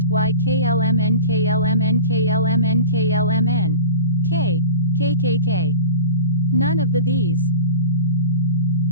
Y KLMN KLMN KLMN KLMN K KKK. None of these.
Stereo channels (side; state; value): both; inverted; correlation -0.35